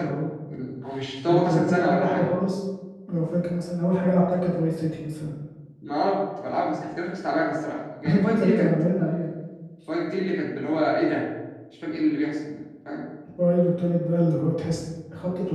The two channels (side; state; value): both; identical; correlation 1.00